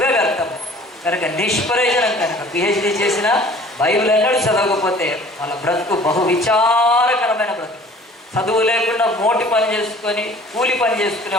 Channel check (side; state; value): both; normal; correlation 0.50